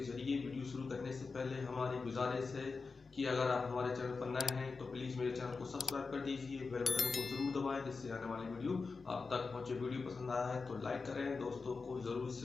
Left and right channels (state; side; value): quieter; right; 4.4 dB